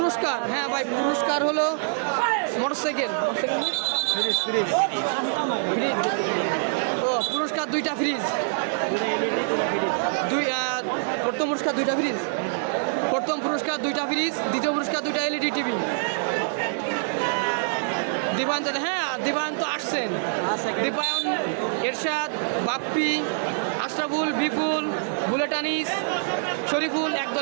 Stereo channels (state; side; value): silent; left; digital silence